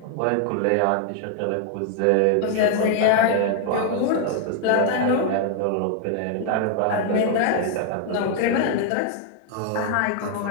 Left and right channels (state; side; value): different; both; correlation 0.00